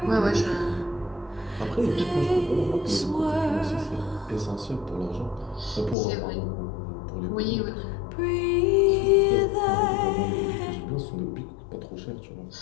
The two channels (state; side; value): drops out; right; at 6.0 s